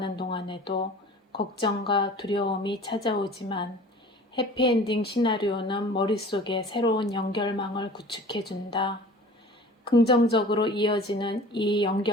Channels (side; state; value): both; normal; correlation 0.44